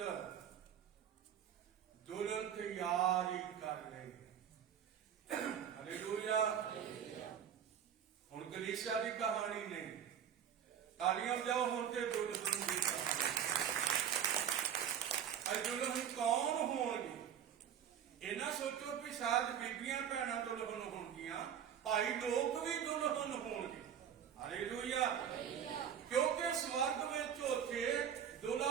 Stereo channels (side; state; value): left; quieter; 8.9 dB